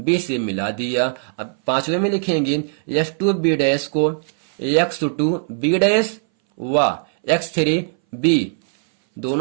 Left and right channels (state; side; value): silent; left; 61 dB below the other